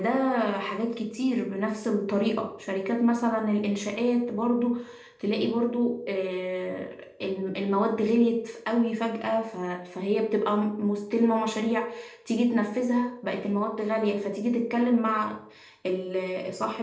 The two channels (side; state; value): both; identical; correlation 1.00